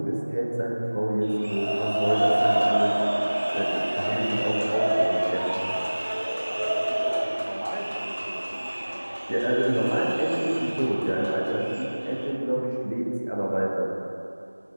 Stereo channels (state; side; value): inverted; both; correlation -1.00